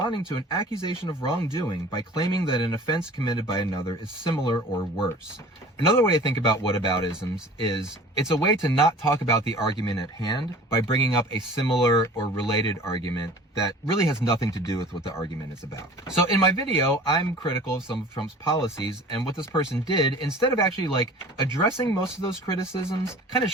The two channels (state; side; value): normal; both; correlation 0.45